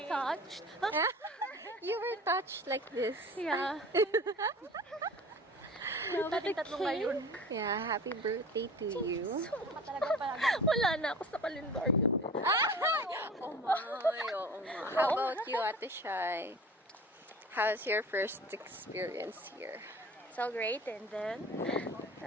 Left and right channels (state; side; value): normal; both; correlation 0.40